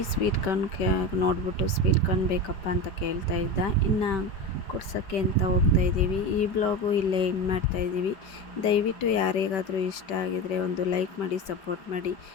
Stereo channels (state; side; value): late; right; 5.2 ms